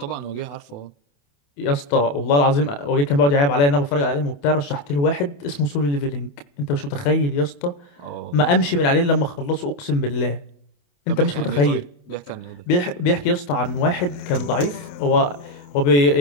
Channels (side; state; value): right; late; 28 ms